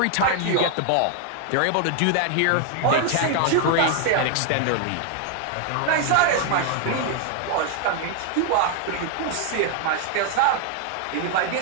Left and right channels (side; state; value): both; different; correlation 0.01